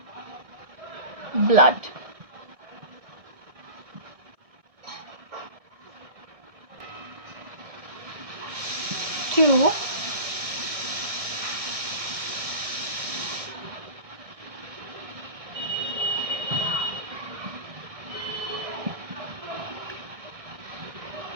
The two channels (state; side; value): late; left; 1.6 ms